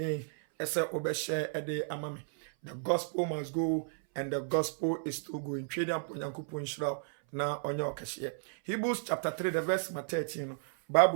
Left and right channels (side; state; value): left; silent; 56 dB below the other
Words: esa obeshe ede amami. The gospel must go and the gospel is to go. In Chadian Ponyankupu Inshira na onyo cashier. Hebrews chapter 3, the verse 13.